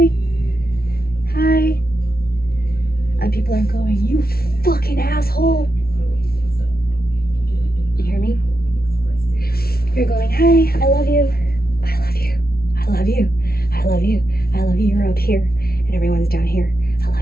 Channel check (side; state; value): right; late; 0.44 ms